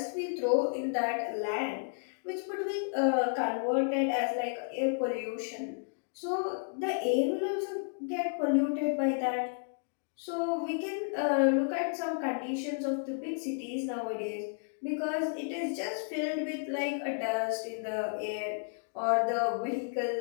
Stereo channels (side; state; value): right; silent; digital silence